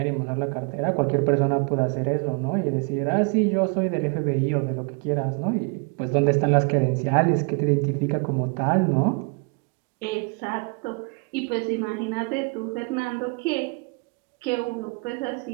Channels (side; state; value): left; quieter; 33.1 dB